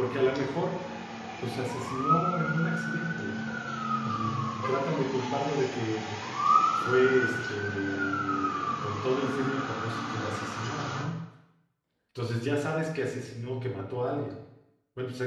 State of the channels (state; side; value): identical; both; correlation 1.00